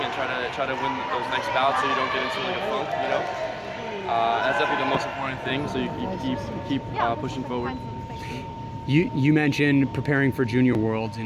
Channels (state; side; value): identical; both; correlation 1.00